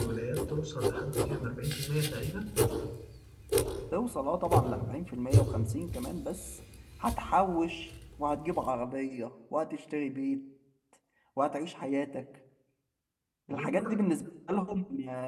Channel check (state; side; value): identical; both; correlation 1.00